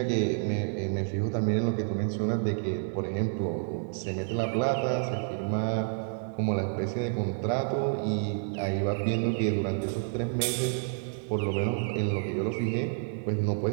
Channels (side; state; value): left; silent; digital silence